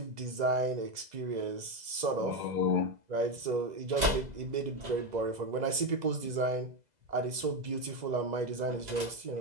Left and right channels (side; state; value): left; late; 2.0 ms